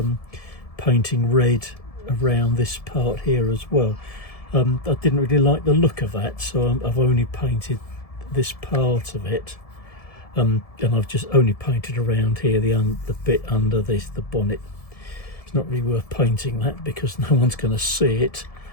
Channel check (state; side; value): late; right; 1.7 ms